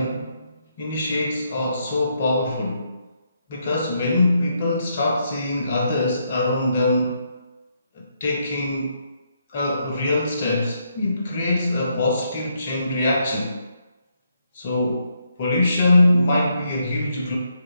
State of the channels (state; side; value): inverted; both; correlation -0.77